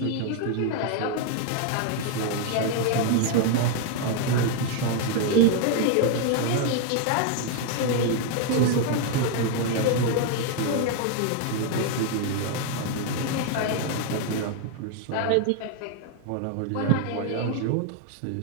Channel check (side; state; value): both; different; correlation 0.00